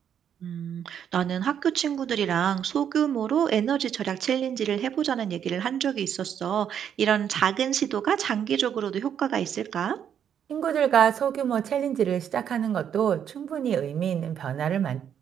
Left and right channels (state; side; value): quieter; left; 8.8 dB